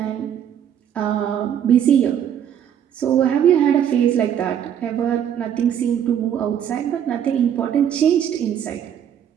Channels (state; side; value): quieter; left; 9.3 dB